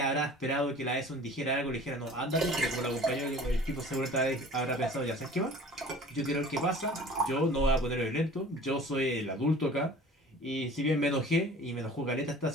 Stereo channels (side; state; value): both; normal; correlation 0.45